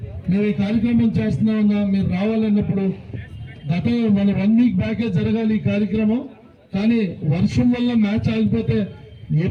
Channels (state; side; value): identical; both; correlation 1.00